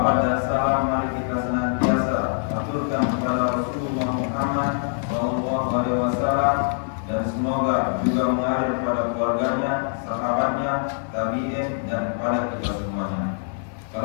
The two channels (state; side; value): silent; right; digital silence